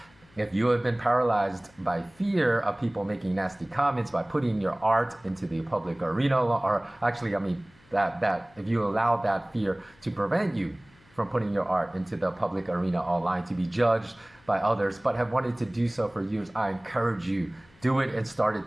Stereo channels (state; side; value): noise; left; hum, 29 dB below the sound